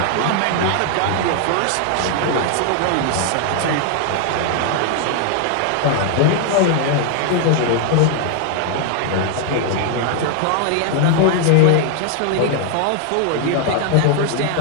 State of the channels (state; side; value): different; both; correlation 0.00